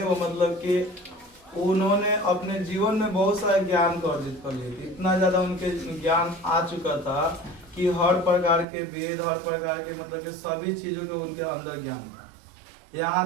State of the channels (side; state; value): left; drops out; at 8.7 s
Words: वो मतलब कि उन्होंने अपने जीवन में बहुत सारे ज्ञान को अर्जित कर लिए थे। इतना ज़्यादा उनके ज्ञान आ चुका था कि हर प्रकार के वेद, हर प्रकार के मतलब कि सभी चीज़ों के उनके अंदर ज्ञान था। यहाँ